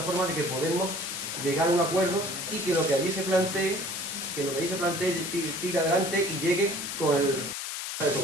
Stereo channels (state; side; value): noise; left; hiss, 5 dB below the sound